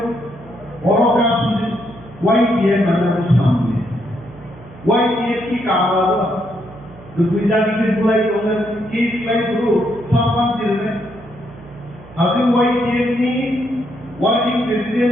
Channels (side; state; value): right; noise; hum, 20 dB below the sound